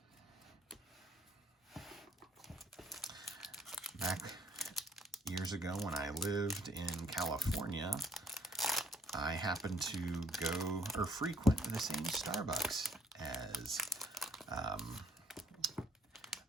Back years ago when I lived in California, I happened to go or frequent the same Starbucks as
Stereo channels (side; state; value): both; normal; correlation 0.63